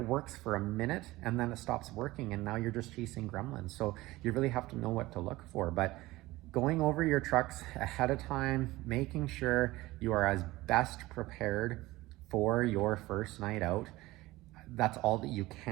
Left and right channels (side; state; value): left; quieter; 18.9 dB